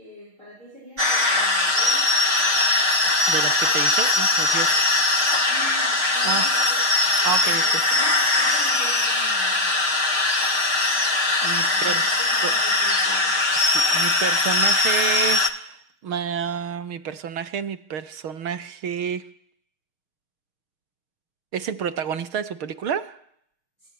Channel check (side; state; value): left; late; 6.5 ms